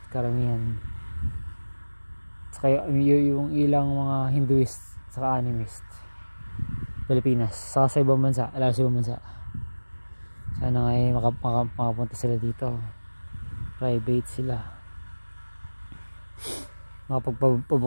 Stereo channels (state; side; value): inverted; both; correlation -1.00